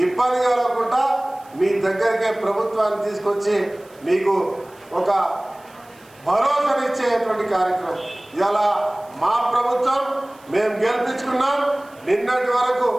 ఇబ్బంది కలగకుండా మీ దగ్గరికే ప్రభుత్వాన్ని తీసుకొచ్చి మీకు ఒక భరోసానిచ్చేటువంటి కార్యక్రమం. ఇలా మా ప్రభుత్వం మేము గెలిపించుకున్నాం. నిన్నటి వరకు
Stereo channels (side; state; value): right; noise; hiss, 28 dB below the sound